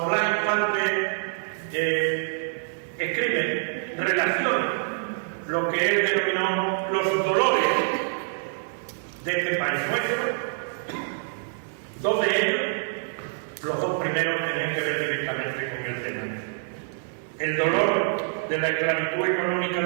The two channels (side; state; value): left; silent; digital silence